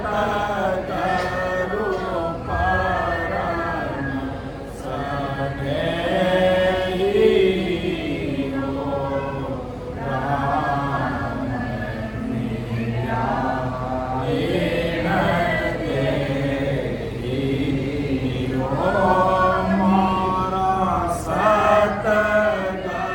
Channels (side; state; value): both; identical; correlation 1.00